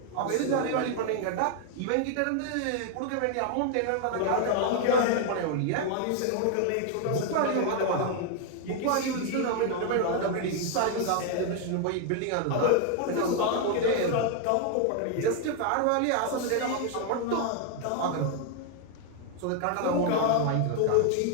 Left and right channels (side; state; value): both; different; correlation 0.00